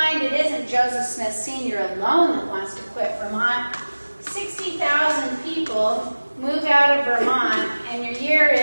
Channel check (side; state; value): both; inverted; correlation -1.00